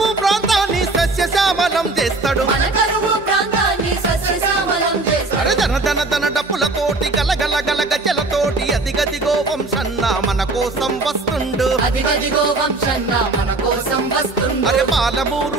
ప్రాంతాన్ని సస్యశ్యామలం చేస్తాడు అరే దన డప్పులతోటి గలగల గల గజలతోటి అదిగదిగో వంశన్న మన కోసం వస్తుండు అరే పాలమూరు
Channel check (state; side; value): quieter; left; 3.3 dB